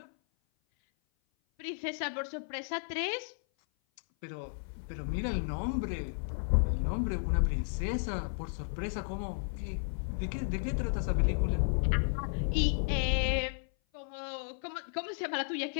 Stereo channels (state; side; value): silent; right; 55 dB below the other